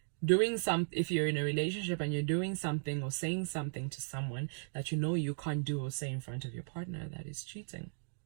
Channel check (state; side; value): silent; left; digital silence